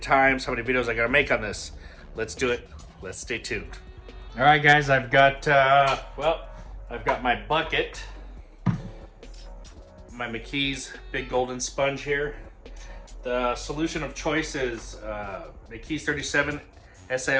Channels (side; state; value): both; identical; correlation 1.00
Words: I gotta make on this? Let's do it. Let's stay tuned. All right, guys, I've got my bucket, my McKee's Big Golden Sponge here. The solution of choice is McKee's 37